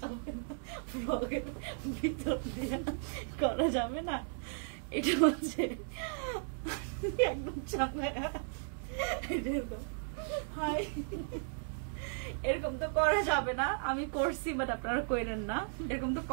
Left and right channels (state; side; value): silent; left; digital silence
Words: যাবে না, পকেট ভিতর দিয়ে করা যাবে না। এটা হচ্ছে একদম চাঙ্গায়া, এরকম তো করা যাবে না। আমি করছি বাট আপনারা করেন না, এরকম তো